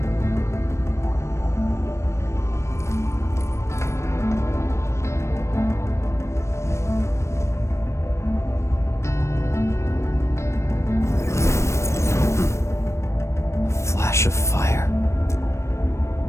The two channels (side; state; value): right; late; 0.13 ms